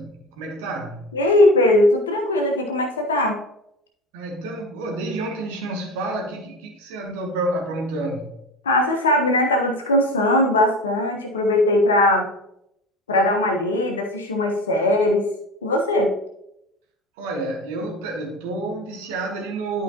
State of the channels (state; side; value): normal; both; correlation 0.30